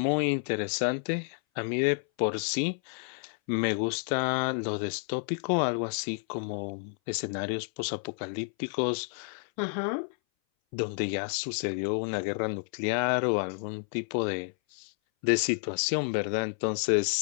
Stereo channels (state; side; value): silent; right; 58 dB below the other